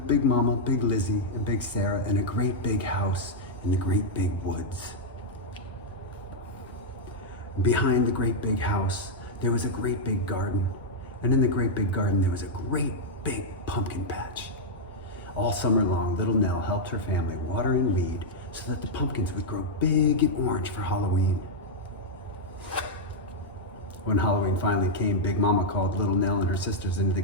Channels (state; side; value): normal; both; correlation -0.04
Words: Big Mama, Big Lizzie, and Big Sarah in a great big house in the great big woods. Behind the great big house, there was a great big garden. And in the great big garden, there was a great big pumpkin patch. All summer long, Little Nell helped her family water and weed so that the pumpkins would grow big and orange for Halloween. When Halloween finally came, Big Mama called Little Nell and her sisters into the